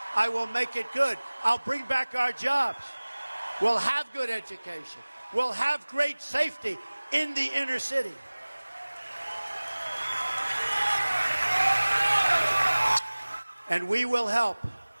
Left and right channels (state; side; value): inverted; both; correlation -1.00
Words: I will make it good. I'll bring back our jobs. We'll have good education. We'll have great safety in the inner city. And we will help